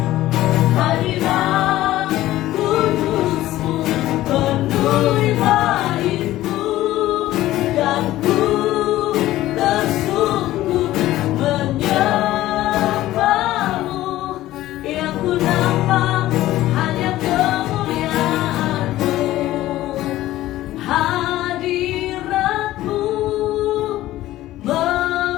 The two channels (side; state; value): right; quieter; 15.3 dB